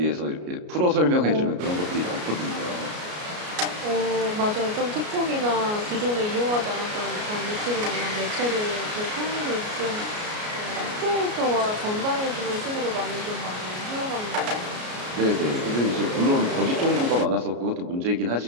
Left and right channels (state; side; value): late; left; 33 ms